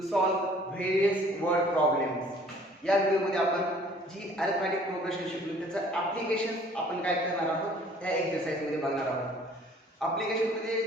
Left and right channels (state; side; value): normal; both; correlation 0.55